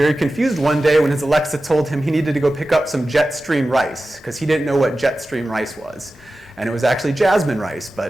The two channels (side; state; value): both; normal; correlation 0.94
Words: confused one day when his Alexa told him he needed to go pick up some Jetstream rice because he didn't know what Jetstream rice was. And it was actually jasmine rice,